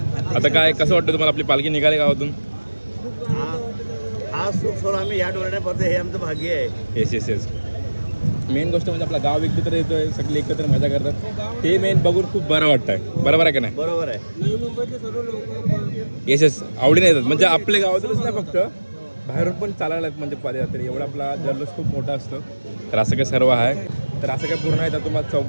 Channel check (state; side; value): inverted; both; correlation -1.00